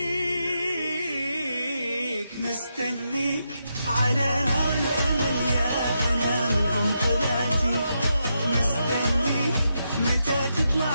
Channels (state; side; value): inverted; both; correlation -0.84